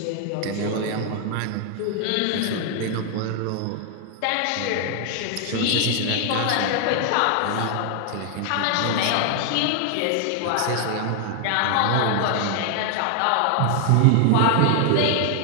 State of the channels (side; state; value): both; different; correlation 0.00